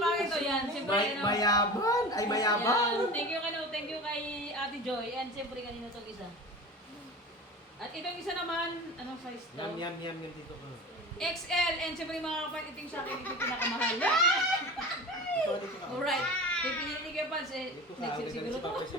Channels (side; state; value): both; normal; correlation 0.33